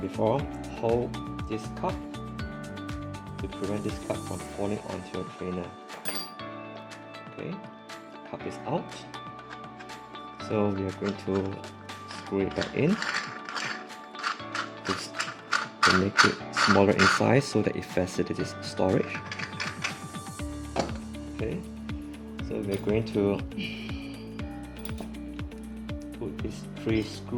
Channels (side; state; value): both; identical; correlation 1.00